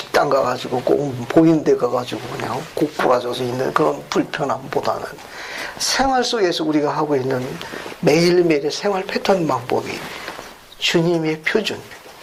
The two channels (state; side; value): identical; both; correlation 1.00